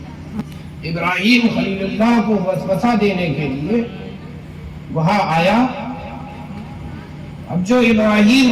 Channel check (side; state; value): both; identical; correlation 1.00